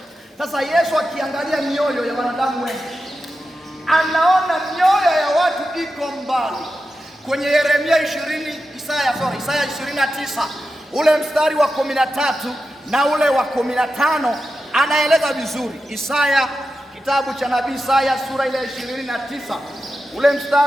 Sasa Yesu akiangalia mioyo ya wanadamu wengi, anaona mioyo ya watu iko mbali. Kwenye Yeremia 29 ule mstari wa 13 na ule wa 15 anaeleza vizuri. Kitabu cha nabii Isaya sura ile 29 ule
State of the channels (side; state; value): both; normal; correlation 0.91